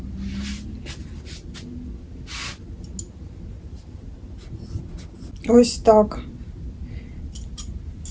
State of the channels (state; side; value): identical; both; correlation 1.00